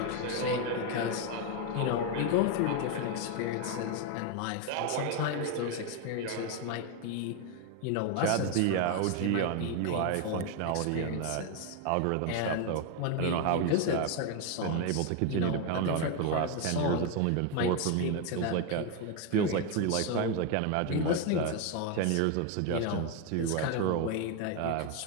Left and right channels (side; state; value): both; different; correlation 0.01